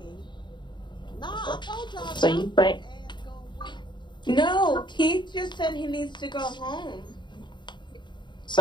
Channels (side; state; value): right; late; 0.22 ms